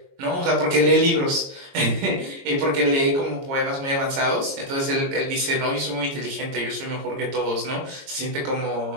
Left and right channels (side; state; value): left; late; 22 ms